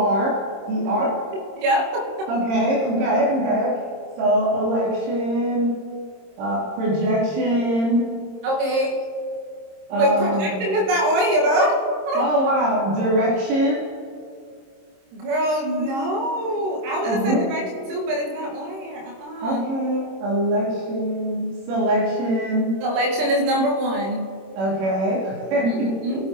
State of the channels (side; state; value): left; late; 26 ms